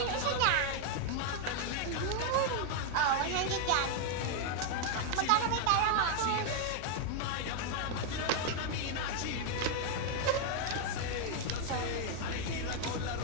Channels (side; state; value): both; different; correlation 0.00